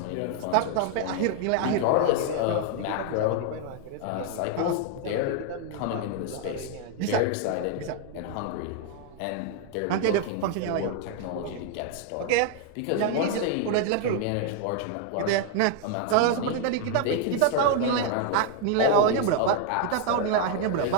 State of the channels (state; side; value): different; both; correlation 0.00